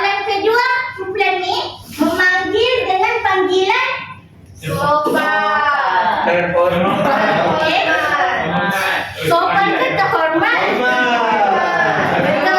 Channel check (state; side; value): identical; both; correlation 1.00